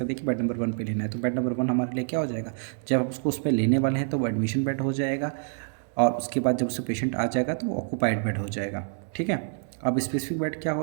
दिया कि बेड नंबर 1 पे लेना है। तो बेड नंबर 1 हमारे लिए क्या हो जाएगा, जब हम उसको उस पर लेने वाले हैं तो वो एडमिशन बेड हो जाएगा, और उसके बाद जब उससे पेशेंट आ जाएगा तो वो ऑक्यूपाइड बेड हो जाएगा, ठीक है। अब स्पेसिफिक बेड क्या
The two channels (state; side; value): silent; left; 60 dB below the other